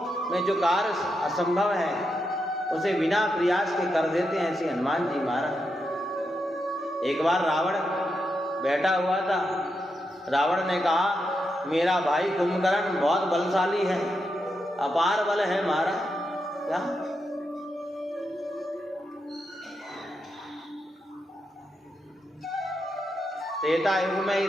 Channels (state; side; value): normal; both; correlation 0.85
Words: में जो कार्य असंभव है उसे बिना प्रयास के कर देते हैं ऐसे हनुमान जी महाराज। एक बार रावण बैठा हुआ था, रावण ने कहा मेरा भाई कुंभकर्ण बहुत बलशाली है, अपार बल है महाराज। क्या त्रेता युग में ही